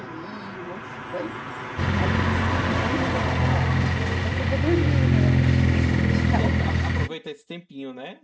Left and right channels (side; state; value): both; identical; correlation 1.00